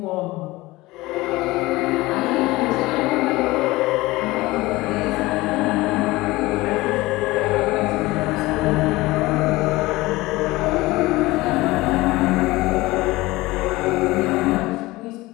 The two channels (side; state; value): right; quieter; 20.0 dB